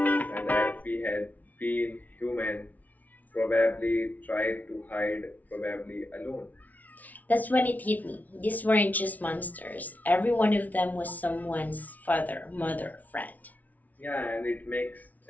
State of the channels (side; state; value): right; late; 0.074 ms